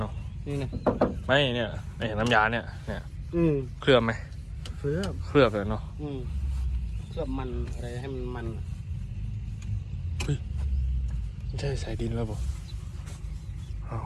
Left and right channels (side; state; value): both; identical; correlation 1.00